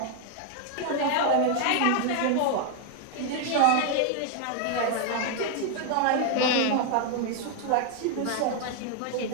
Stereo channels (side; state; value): both; different; correlation 0.00